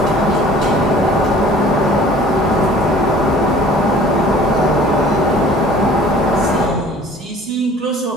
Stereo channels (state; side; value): normal; both; correlation 0.50